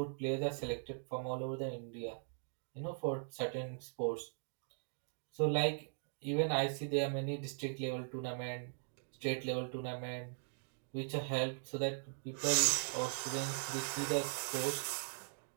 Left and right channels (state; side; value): silent; left; digital silence